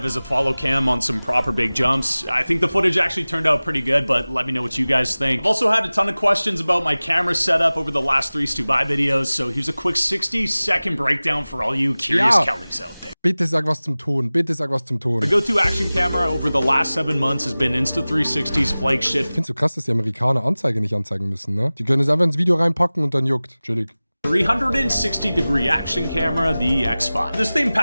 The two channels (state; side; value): inverted; both; correlation -0.98